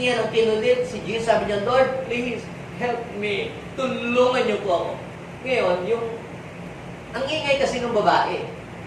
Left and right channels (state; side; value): identical; both; correlation 1.00